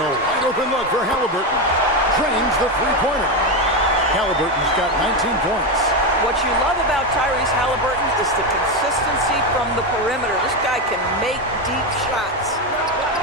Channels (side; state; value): both; normal; correlation 0.12